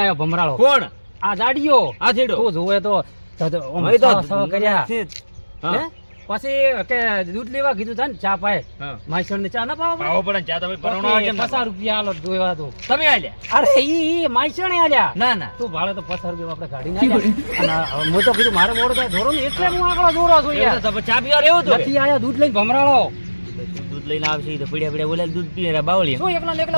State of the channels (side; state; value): both; inverted; correlation -1.00